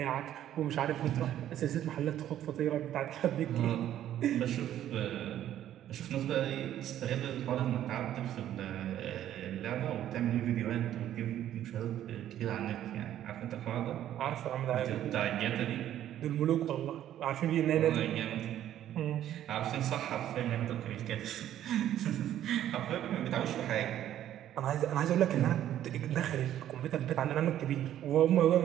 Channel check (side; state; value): left; quieter; 11.7 dB